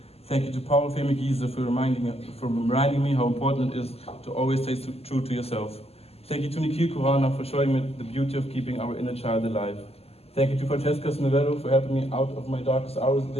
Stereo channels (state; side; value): late; right; 0.29 ms